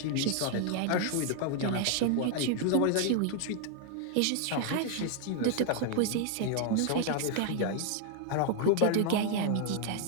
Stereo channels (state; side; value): different; both; correlation 0.00